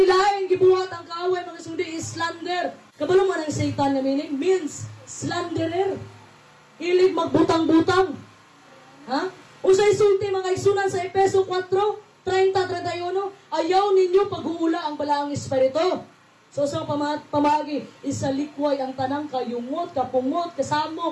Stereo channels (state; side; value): identical; both; correlation 1.00